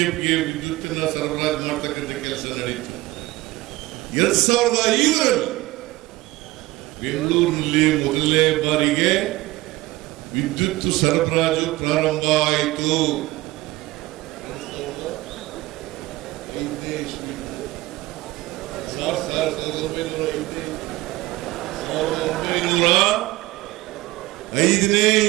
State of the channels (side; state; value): left; quieter; 18.9 dB